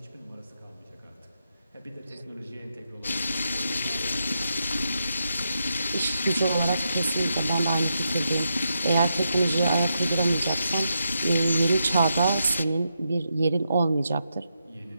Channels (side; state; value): both; inverted; correlation -0.84